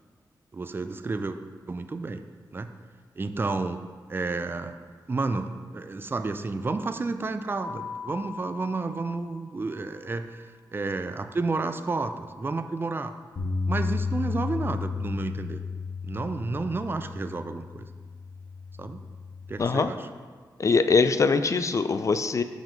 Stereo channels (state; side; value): normal; both; correlation 0.75